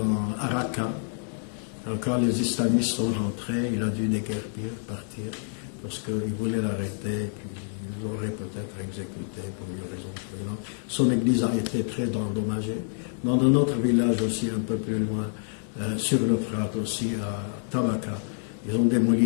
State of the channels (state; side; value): silent; right; 60 dB below the other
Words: Araka. Alors quand les islamistes sont rentrés, il a dû déguerpir, partir, parce qu'ils voulaient l'arrêter, puis ils l'auraient peut-être exécuté pour une raison ou une autre. Son église a été très endommagée. Dans un autre village aussi, un peu plus loin, sur l'Euphrate aussi, à Tabaka, ils ont